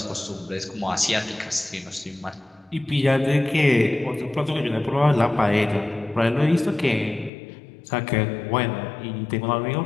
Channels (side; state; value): right; drops out; at 7.3 s